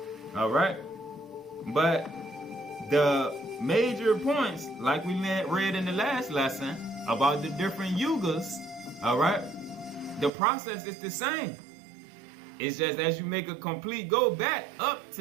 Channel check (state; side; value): drops out; left; at 10.3 s